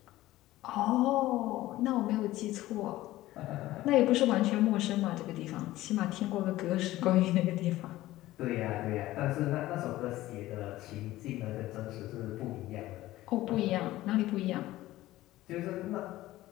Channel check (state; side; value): quieter; right; 16.3 dB